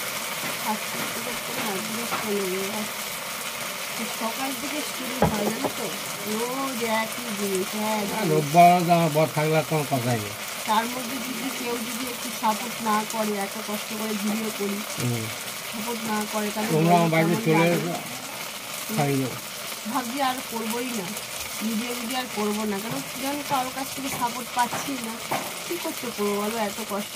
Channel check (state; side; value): identical; both; correlation 1.00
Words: আজকে সকাল থেকে শুরু হয় জানো তো, রোজ একই জিনিস। হ্যাঁ, রোববার আমার বর থাকলে কোনো কথাই নেই। তার মধ্যে যদি কেউ যদি একটু সাপোর্ট না করে, এত কষ্ট করে ভিডিও করি, সাপোর্ট না করে, তাহলে তোমরা আমার বাড়িতে চলে এসো, খাই যাবো। ভাবছি আর করবোই না, ভিডিও আর করবো না, কারণ যখন কারোর কাছ থেকে সাপোর্ট পাচ্ছি না, কী করতে করবো বলো? এত কষ্ট